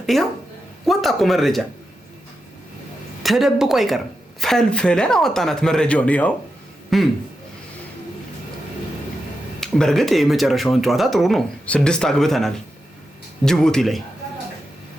ይሄው ወጣ እኮ መረጃ ተደብቆ አይቀርም። ፈልፈለን አወጣናት መረጃውን። ይኸው በእርግጥ የመጨረሻውን ጨዋታ ጥሩ ነው። 6 አግብተናል ጅቡቲ ላይ።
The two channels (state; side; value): normal; both; correlation 0.88